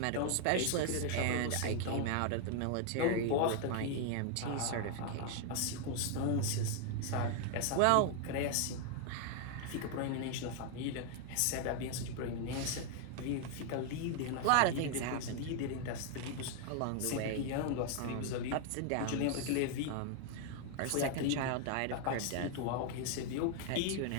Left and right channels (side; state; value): both; different; correlation 0.00